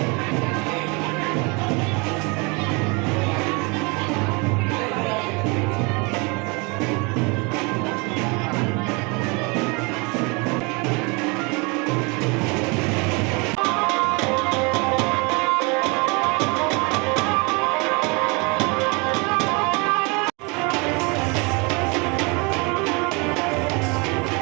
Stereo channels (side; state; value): left; quieter; 29.5 dB